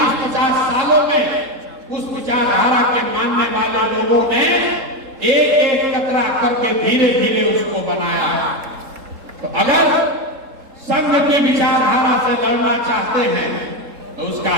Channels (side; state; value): left; late; 3.7 ms